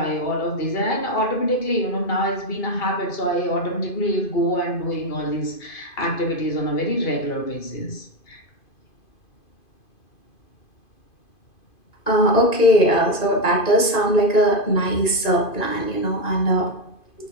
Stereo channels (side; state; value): right; late; 2.5 ms